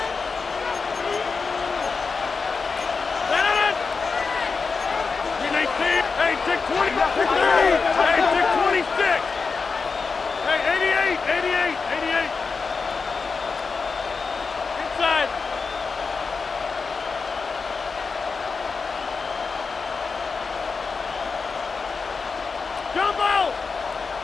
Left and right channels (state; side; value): quieter; right; 4.8 dB